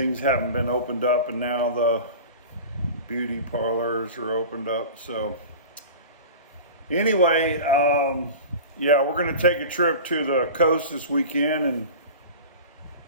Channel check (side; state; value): both; inverted; correlation -0.35